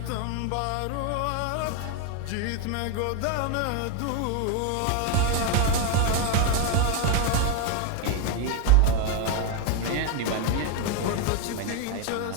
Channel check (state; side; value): different; both; correlation 0.01